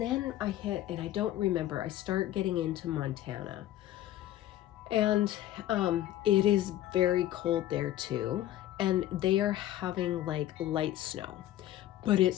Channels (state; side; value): quieter; right; 13.5 dB